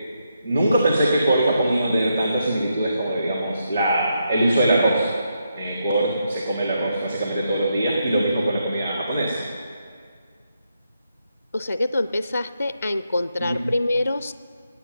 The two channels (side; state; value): both; inverted; correlation -0.81